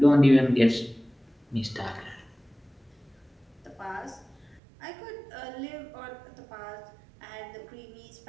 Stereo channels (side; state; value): left; drops out; at 4.6 s